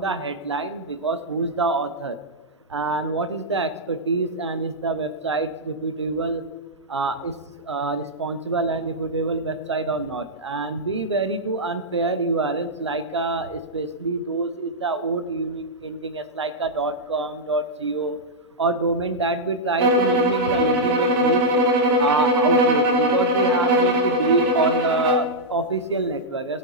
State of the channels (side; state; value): both; normal; correlation -0.08